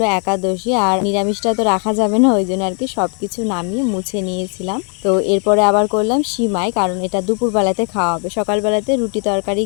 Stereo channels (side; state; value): right; quieter; 39.7 dB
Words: একাদশী, আর নিরামিষটা তো রাখা যাবে না, ওই জন্য আর কি সব কিছু নামিয়ে মুছে নিয়েছিলাম। তো এরপরে আবার করলাম সিমাই, কারণ এটা দুপুরবেলাতে খাওয়া হবে। সকালবেলাতে রুটি তরকারি